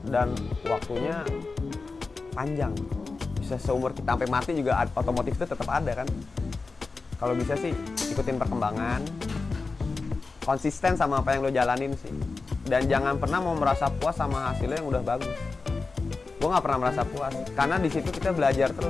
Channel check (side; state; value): right; quieter; 4.1 dB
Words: dan waktunya panjang. Bisa seumur kita sampai mati juga otomotif itu tetap ada kan. Kalau bisa sih ikutin perkembangan, konsisten sama apa yang lo jalanin sih, dan jangan pernah mau merasa puas sama hasilnya yang udah bagus. Gue nggak pernah merasa puas, karena di situ kita belajar